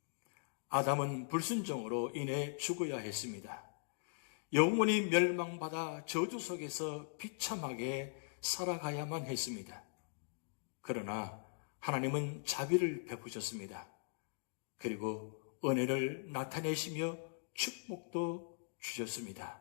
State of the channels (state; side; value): silent; right; digital silence